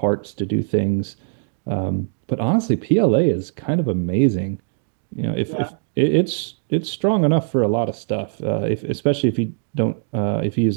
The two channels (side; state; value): left; silent; digital silence